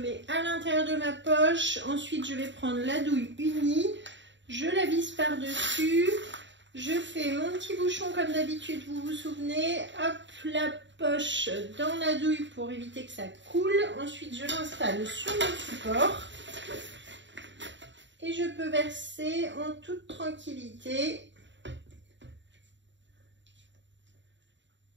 à l'intérieur de ma poche. Ensuite, je vais prendre la douille unie. Je la visse par-dessus. Je fais mon petit bouchon comme d'habitude, vous vous souvenez. Hop, la poche dans la douille pour éviter que ça coule. Ensuite, je l'installe sur mon support. Et je peux verser en toute tranquillité.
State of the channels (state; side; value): late; left; 0.53 ms